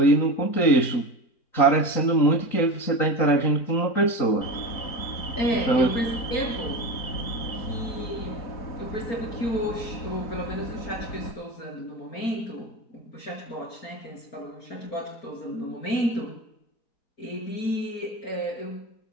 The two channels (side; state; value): right; late; 3.9 ms